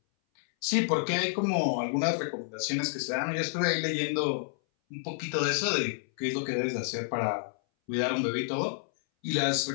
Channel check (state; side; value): silent; right; 58 dB below the other